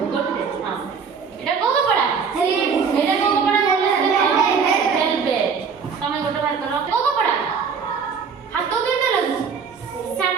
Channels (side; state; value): left; quieter; 6.0 dB